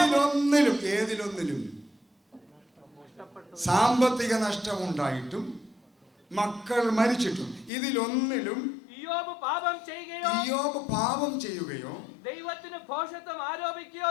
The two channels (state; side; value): drops out; right; at 7.7 s